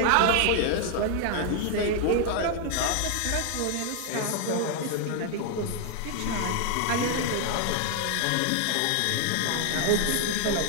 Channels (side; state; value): both; different; correlation 0.00